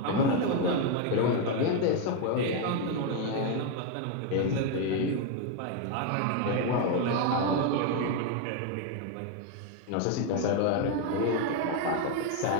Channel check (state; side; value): different; both; correlation 0.02